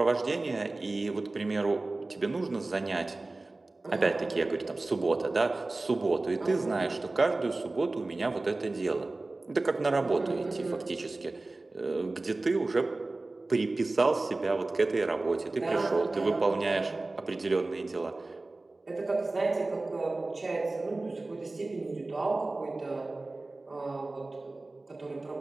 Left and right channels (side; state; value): left; quieter; 3.1 dB